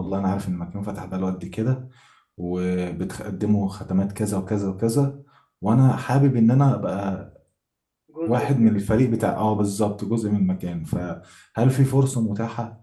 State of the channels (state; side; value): identical; both; correlation 1.00